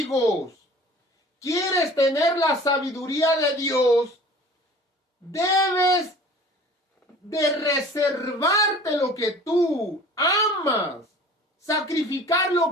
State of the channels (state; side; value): normal; both; correlation 0.45